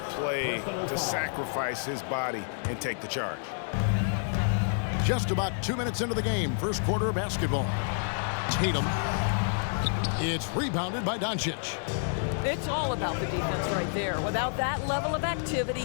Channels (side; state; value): right; silent; digital silence